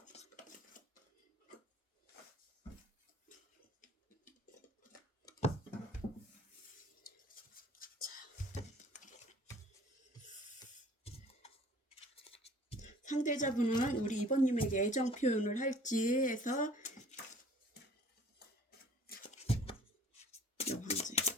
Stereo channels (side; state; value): both; normal; correlation 0.51